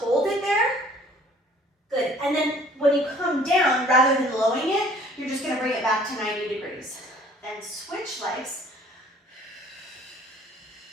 it there. Good, and then when you come down, rather than lowering it, you're just gonna bring it back to 90 degrees. Then switch legs.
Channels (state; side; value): normal; both; correlation 0.55